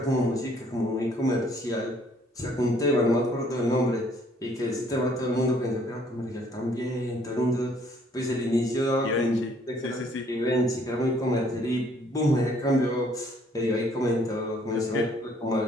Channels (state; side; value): normal; both; correlation 0.62